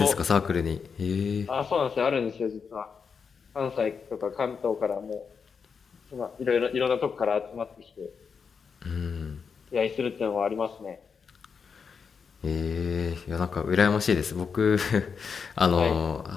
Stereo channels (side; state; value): right; quieter; 6.0 dB